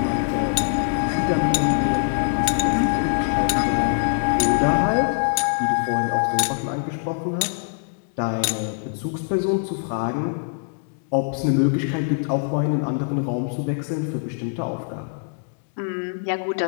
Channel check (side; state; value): right; silent; digital silence